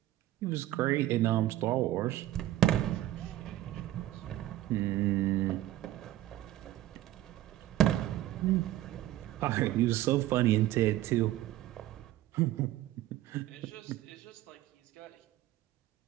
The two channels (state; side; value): quieter; left; 14.4 dB